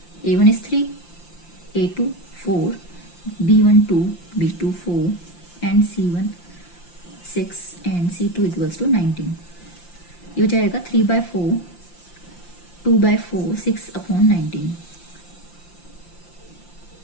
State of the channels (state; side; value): late; right; 5.8 ms